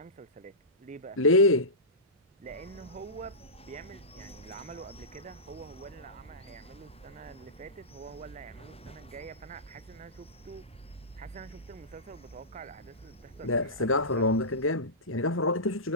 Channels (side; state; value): both; normal; correlation -0.17